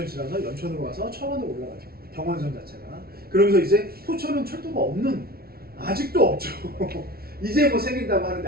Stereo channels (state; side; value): late; left; 0.44 ms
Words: 지나서 연천으로 가서 천원으로 올라가죠. 경원선 자체가. 그러면서 이제 포천은 철도가 없는 아직도 없죠. 이제 뭐 생긴다고